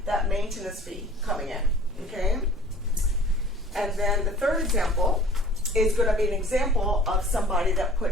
that maintenance fee coming in, okay? And then the third example is going to be an example of somebody that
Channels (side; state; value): both; normal; correlation 0.48